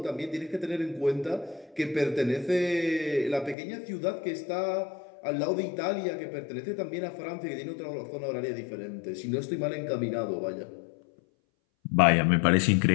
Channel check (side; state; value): right; drops out; at 3.6 s